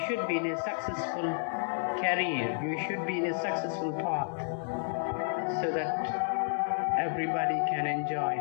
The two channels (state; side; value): silent; right; digital silence